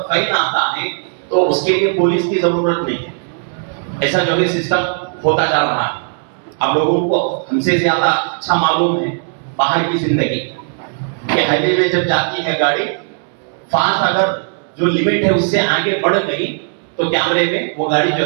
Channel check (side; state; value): left; silent; digital silence